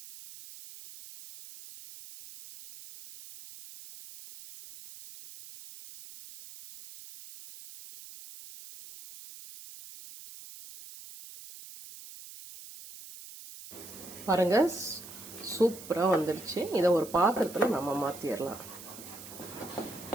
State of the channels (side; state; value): right; noise; hiss, 15 dB below the sound